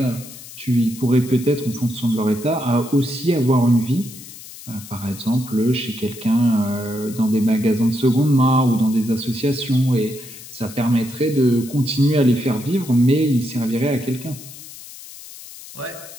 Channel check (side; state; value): left; noise; hiss, 16 dB below the sound